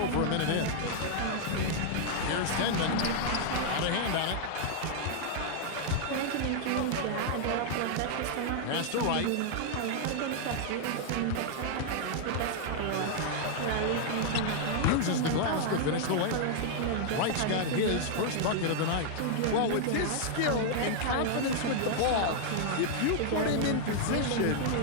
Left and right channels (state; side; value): different; both; correlation -0.01